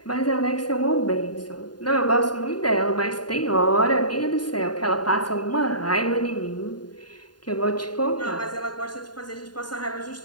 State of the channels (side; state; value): right; late; 0.70 ms